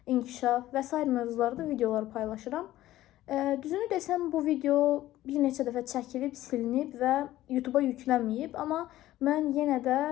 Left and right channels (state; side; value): quieter; right; 14.9 dB